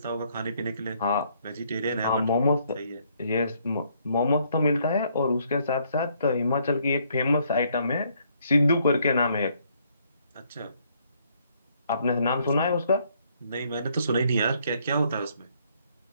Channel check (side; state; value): both; inverted; correlation -0.68